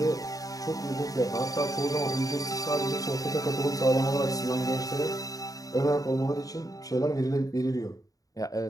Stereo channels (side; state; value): right; late; 0.17 ms